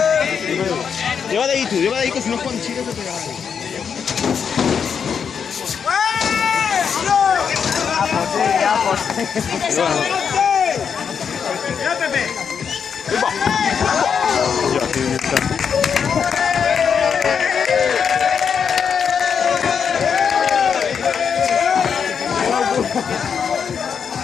Lleva de ahí tú, que si no Juan Chile te pega ahí. ¡Ya, Pepe! Ya, tío, está.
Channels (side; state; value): right; quieter; 6.9 dB